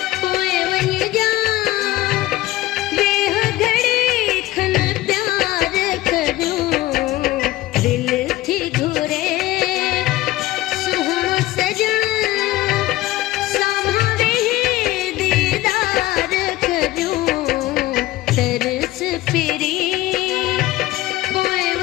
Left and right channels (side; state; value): right; quieter; 16.7 dB